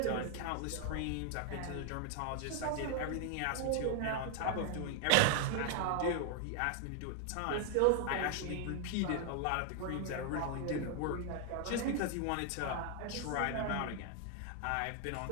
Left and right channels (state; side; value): different; both; correlation 0.00